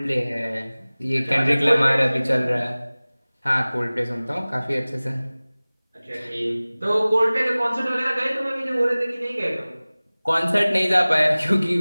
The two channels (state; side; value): inverted; both; correlation -0.99